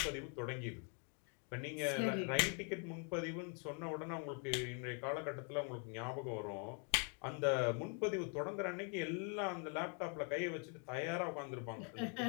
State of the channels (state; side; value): quieter; right; 37.6 dB